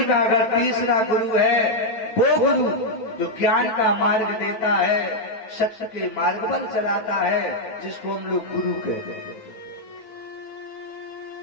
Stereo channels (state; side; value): late; right; 9.0 ms